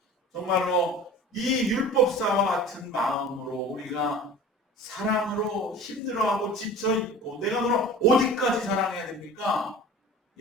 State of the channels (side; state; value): both; normal; correlation 0.39